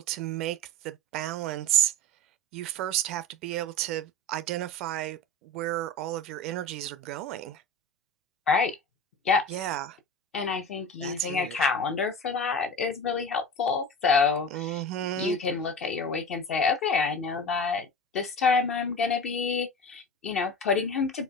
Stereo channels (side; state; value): both; normal; correlation 0.31